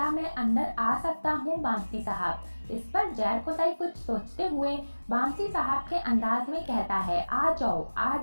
मैं अंदर आ सकता हूँ बामसी साहब। इस पर जरकोताई कुछ सोचते हुए बामसी साहब के अंदाज में कहता है, आ जाओ आ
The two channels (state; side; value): inverted; both; correlation -1.00